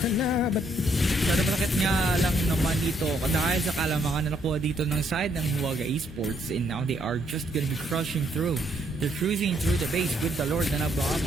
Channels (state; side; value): normal; both; correlation 0.71